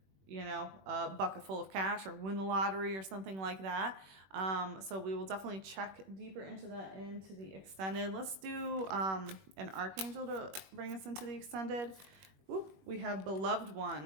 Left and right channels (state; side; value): late; left; 21 ms